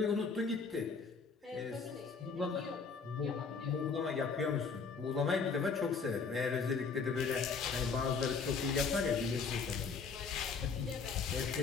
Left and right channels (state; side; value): quieter; right; 5.2 dB